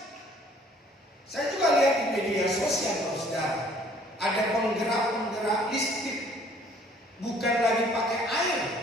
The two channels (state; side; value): normal; both; correlation 0.57